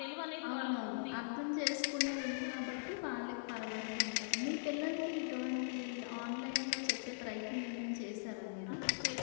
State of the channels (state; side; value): silent; right; digital silence